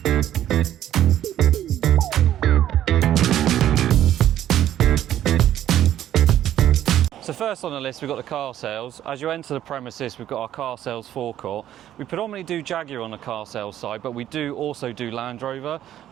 So first on the list, we've got the car sales. As you enter the premises, we've got our car sales forecourt. We predominantly do Jaguar on the car sales side, but we do also do Land Rover.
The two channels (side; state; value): left; quieter; 11.9 dB